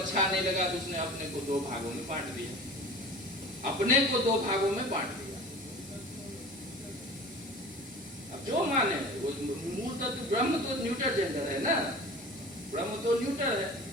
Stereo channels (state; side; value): normal; both; correlation 0.39